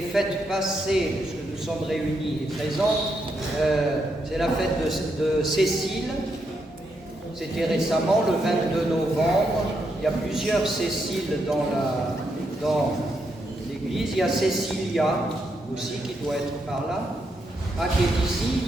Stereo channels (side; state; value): both; normal; correlation 0.80